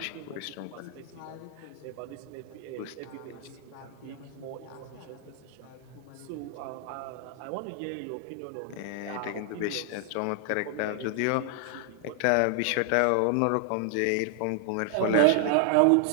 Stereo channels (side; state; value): both; different; correlation 0.00